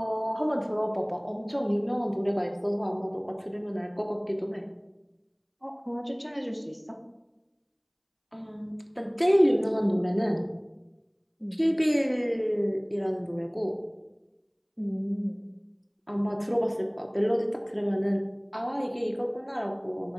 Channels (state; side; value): identical; both; correlation 1.00